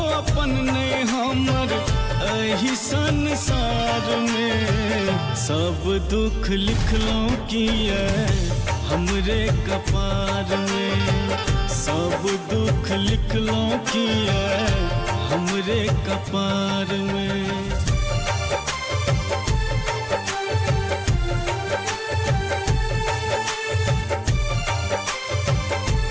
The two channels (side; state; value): both; identical; correlation 1.00